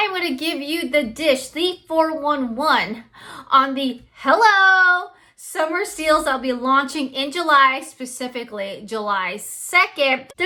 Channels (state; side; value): identical; both; correlation 1.00